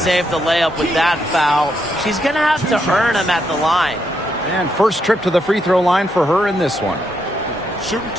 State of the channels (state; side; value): normal; both; correlation 0.78